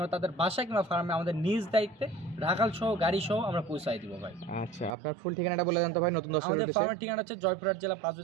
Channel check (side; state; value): left; drops out; at 5.0 s